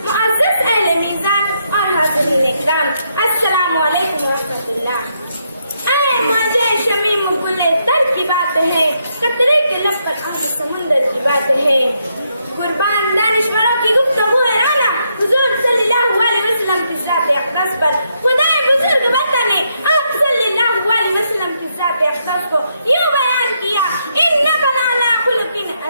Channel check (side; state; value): both; inverted; correlation -0.78